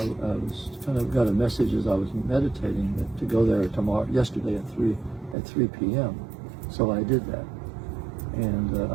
was kind of got a message as I was meditating that to go there yesterday at 3 p.m. So I did that, and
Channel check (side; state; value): left; drops out; at 5.4 s